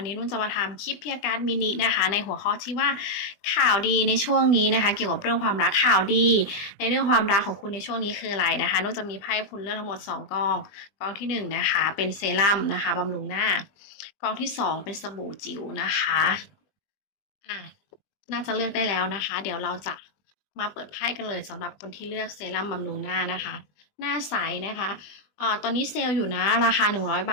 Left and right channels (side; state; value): right; late; 20 ms